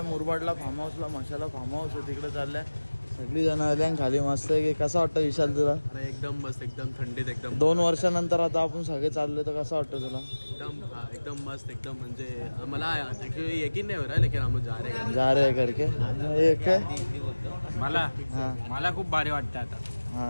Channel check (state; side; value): inverted; both; correlation -1.00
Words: मुरबाडला फार्म हाऊसला. मशाला फार्म हाऊस आहे तिकडे चाललंय. सगळी जण आल्या खाली. मस्त आहे की. कसा वाटतं विशाल तुला? अरे एकदम मस्त, एकदम थंडीत एकदम. 2 वर्षानंतर आता आपण सगळे चाललोय तर कसं वाटतं तुला? एकदम मस्त एकदम. म्हणजे मला ऍक्च्युअली यकीन नाही हो रहा लेकिन हम जा रहे हैं करके एक मला खूप भारी वाटतं आता.